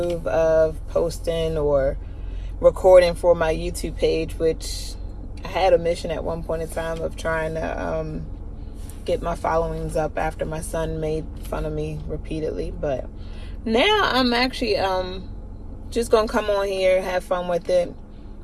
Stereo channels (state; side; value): identical; both; correlation 1.00